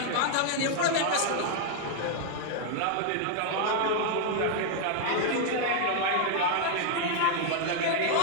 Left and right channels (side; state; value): both; different; correlation 0.00